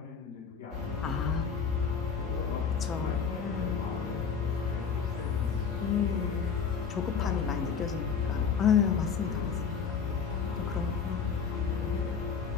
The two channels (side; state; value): right; quieter; 6.3 dB